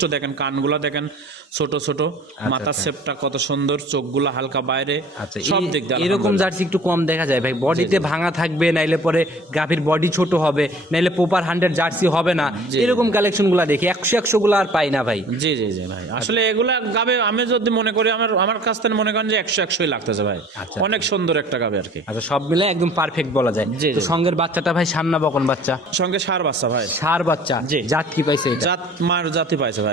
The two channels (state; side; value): normal; both; correlation 0.49